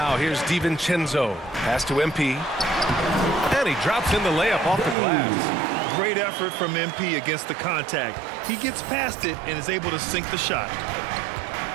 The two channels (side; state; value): left; drops out; at 5.0 s